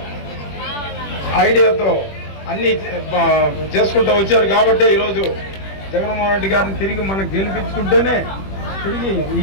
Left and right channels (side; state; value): right; late; 21 ms